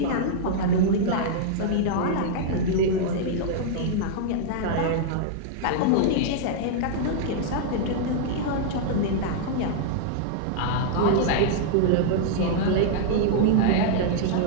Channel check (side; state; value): both; different; correlation -0.01